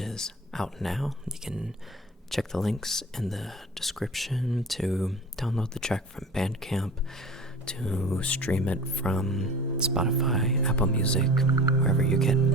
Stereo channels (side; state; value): both; normal; correlation 0.38